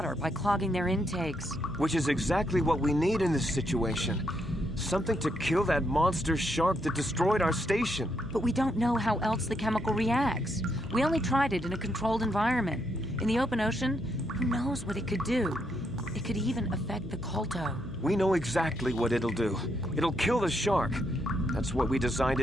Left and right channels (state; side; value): noise; left; hum, 15 dB below the sound